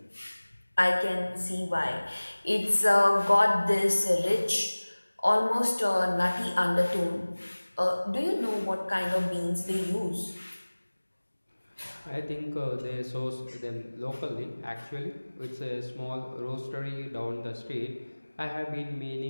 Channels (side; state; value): both; inverted; correlation -1.00